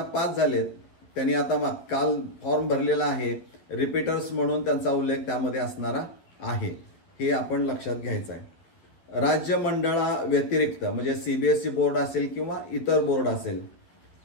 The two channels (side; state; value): right; late; 12 ms